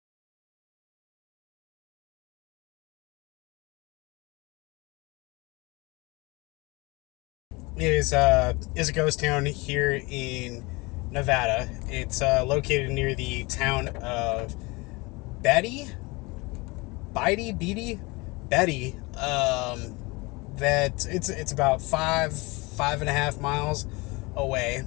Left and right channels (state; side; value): quieter; right; 25.0 dB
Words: Is a ghost town here in Nevada. It's located near the town of Betty. That it's about five and a half miles away,